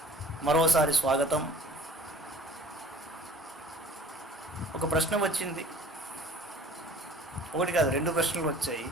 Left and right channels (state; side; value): normal; both; correlation 0.50